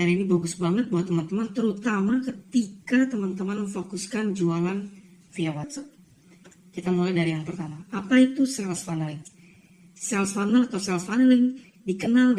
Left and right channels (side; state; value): both; identical; correlation 1.00